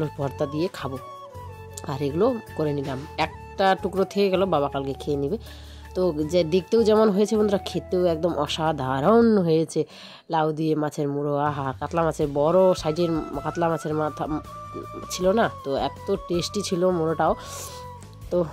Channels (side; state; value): both; identical; correlation 1.00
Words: ভর্তা দিয়ে খাবো। আর এগুলো করে নিলাম, একটা টুকরো থেকে গেল, বাবা কালকে খেয়ে নেবে। তো যে দেখতেও যেমন হয়েছে বন্ধুরা, খেতেও একদম অসাধারণ হয়েছে। লাউ দিয়ে মাছের মুড়ো, আহা, কাতলা মাছের বড় সাইজের কাতলা মাছের মাথা ছিল না, তো এত টেস্টি ছিল মুড়োটাও। তো